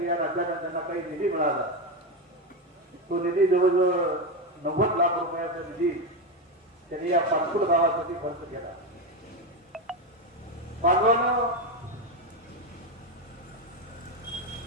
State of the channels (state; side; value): normal; both; correlation 0.12